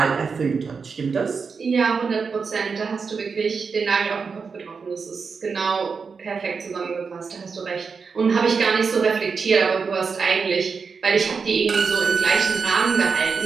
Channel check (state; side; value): quieter; left; 5.3 dB